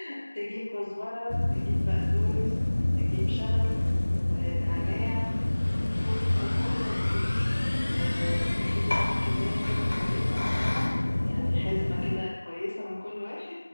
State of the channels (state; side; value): inverted; both; correlation -1.00